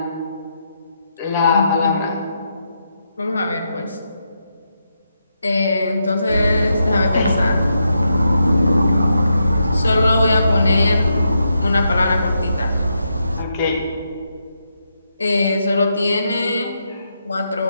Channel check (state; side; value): inverted; both; correlation -0.82